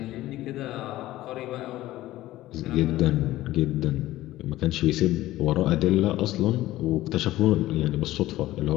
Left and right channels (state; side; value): quieter; right; 15.9 dB